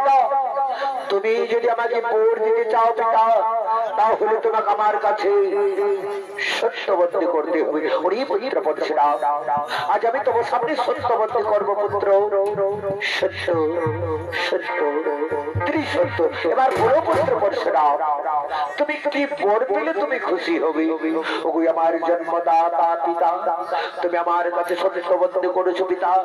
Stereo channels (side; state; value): both; identical; correlation 1.00